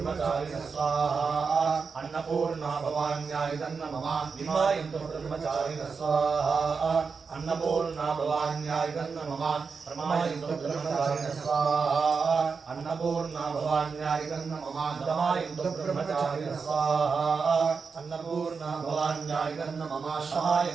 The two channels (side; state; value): left; quieter; 5.2 dB